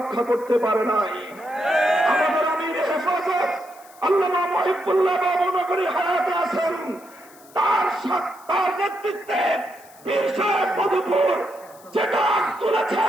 করতে পারে নাই। আমাদের আমির হেফাজত আল্লামা মহিবুল্লাহ বাবু নগরী হায়াতে আছেন, তার নেতৃত্বে পীর সাহেব মধুপুর যেটা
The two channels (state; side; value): noise; left; hiss, 25 dB below the sound